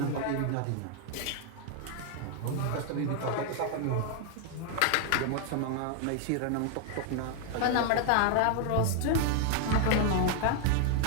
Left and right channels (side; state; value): both; different; correlation 0.00